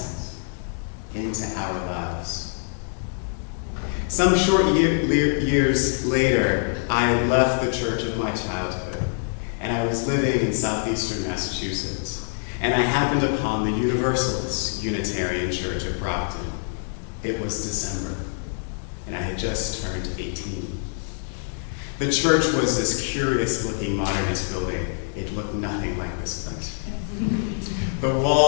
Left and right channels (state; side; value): silent; right; digital silence